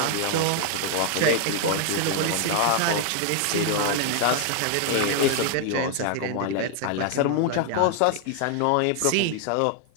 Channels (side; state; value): both; different; correlation 0.00